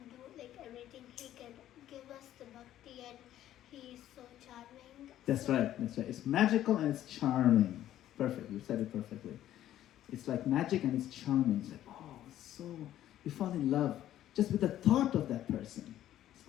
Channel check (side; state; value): right; quieter; 12.5 dB